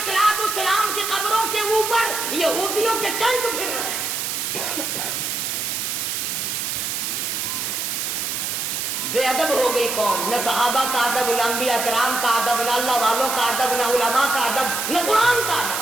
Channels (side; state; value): right; noise; hiss, 2 dB below the sound